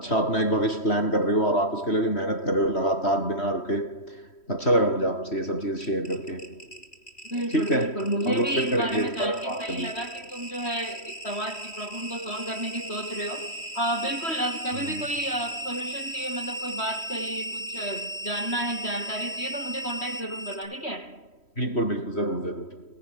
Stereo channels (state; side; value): late; right; 3.1 ms